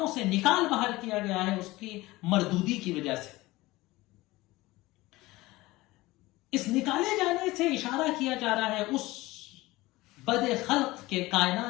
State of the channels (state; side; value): quieter; right; 19.6 dB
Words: سے نکال باہر کیا گیا ہے اس کی مردودی کی وجہ سے۔ اس نکالے جانے سے اشارہ کیا جا رہا ہے اس بد خلق کے،